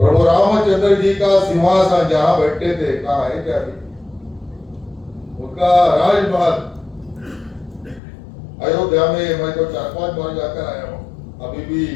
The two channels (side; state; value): right; drops out; at 8.0 s